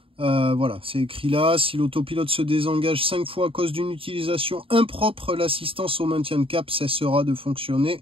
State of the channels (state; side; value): late; left; 0.26 ms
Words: voilà, c'est écrit là. Si l'autopilote se désengage 5 fois à cause d'une utilisation impropre, l'assistance au maintien de cap cessera de fonctionner.